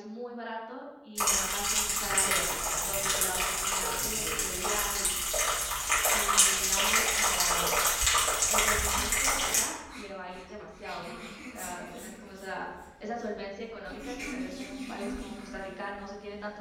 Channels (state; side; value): identical; both; correlation 1.00